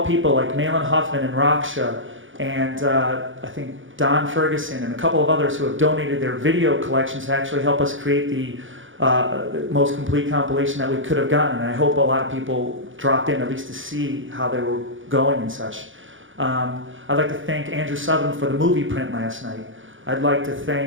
people like Malin Huffman and Raksha, and I think Don Ferguson and a couple of others who have donated their video collections to actually help us create the most complete compilation that we could have gotten. And I hope a lot of people dropped in at least to see how they were going and such. I'd like to thank Andrew Sutherland for the movie print last night. I'd like to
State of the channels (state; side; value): late; left; 0.57 ms